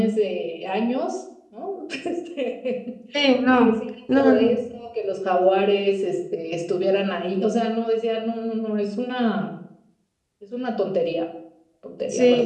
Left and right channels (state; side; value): identical; both; correlation 1.00